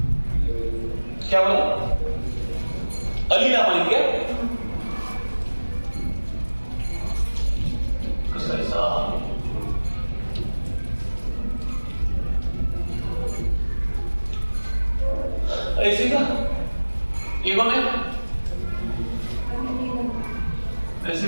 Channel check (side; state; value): both; inverted; correlation -1.00